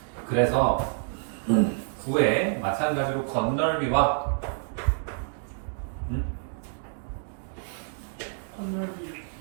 그래서 구에 마찬가지로 건널비와 건널비.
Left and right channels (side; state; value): left; silent; digital silence